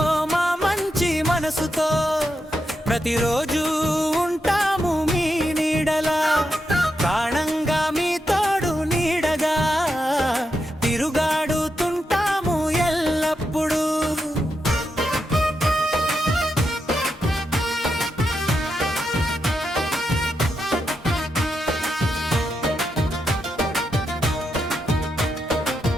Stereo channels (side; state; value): both; normal; correlation 0.85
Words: మా మంచి మనసుతో ప్రతిరోజు ఉంటాము మీ నీడలా, ప్రాణంగా మీ తోడు నీడగా తిరుగాడుతుంటాము ఎల్లప్పుడూ.